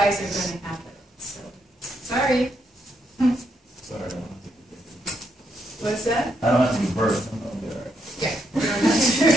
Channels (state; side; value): normal; both; correlation 0.78